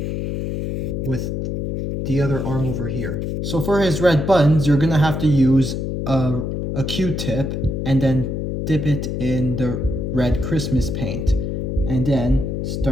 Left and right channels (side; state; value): left; noise; hum, 2 dB below the sound